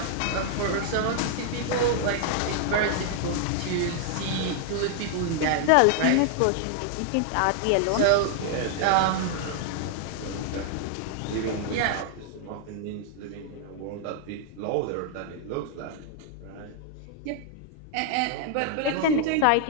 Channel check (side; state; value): both; different; correlation 0.00